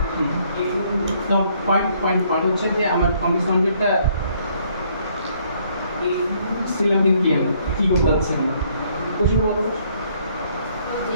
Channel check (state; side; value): inverted; both; correlation -0.66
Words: তো পয়েন্ট হচ্ছে যে আমার কমপ্লেক্স কনজুগেটটা স্টিল আমি কি করতে যাচ্ছে না কোশ্চেন বলো যে